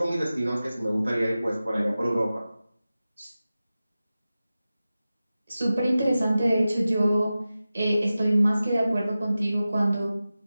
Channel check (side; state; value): both; inverted; correlation -0.95